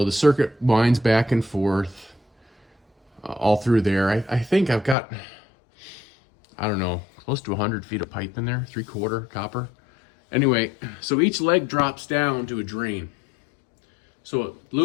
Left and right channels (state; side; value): drops out; right; at 5.0 s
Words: the circuit winds back and forth all through there. I think I've got, I don't know, close to 100 feet of pipe in there, 3/4 copper. Anyway, so each leg drops down to a drain. So it